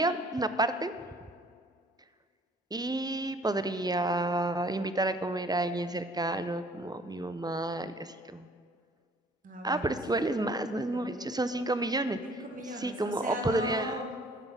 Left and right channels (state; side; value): normal; both; correlation 0.56